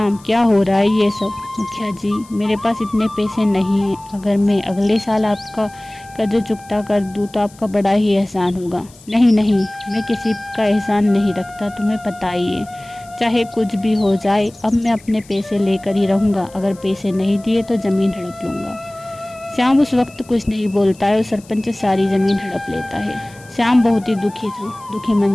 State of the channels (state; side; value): noise; left; hiss, 25 dB below the sound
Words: क्या हो रहा है ये सब? मुखिया जी, मेरे पास इतने पैसे नहीं हैं। अगर मैं अगले साल आपका कर्ज चुकता कर दूं तो आपका बड़ा ही एहसान होगा। नहीं नहीं, मैं किसी का एहसान नहीं रखता, तुम्हें पता ही है। चाहे कुछ भी हो जाए, अब मैं अपने पैसे लेकर ही रहूँगा। अगर पैसे नहीं दिए तो ज़मीन हड़प लूँगा। श्याम उस वक्त कुछ नहीं बोलता है और सरपंच सारी ज़मीन हड़प लेता है। श्याम बहुत ही दुखी था। दुखी